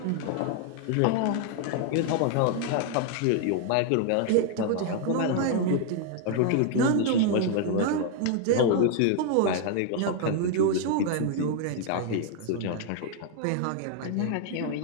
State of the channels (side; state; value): both; different; correlation 0.00